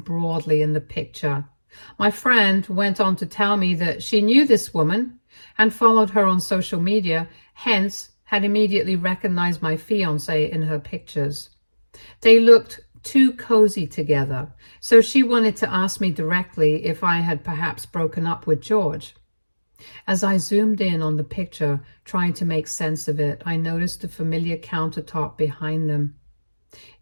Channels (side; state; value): both; inverted; correlation -1.00